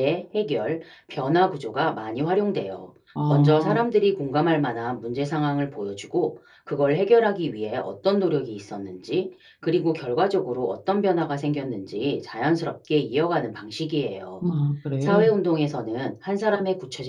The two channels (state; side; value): identical; both; correlation 1.00